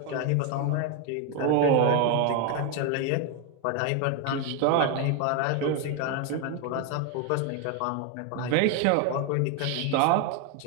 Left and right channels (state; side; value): different; both; correlation 0.01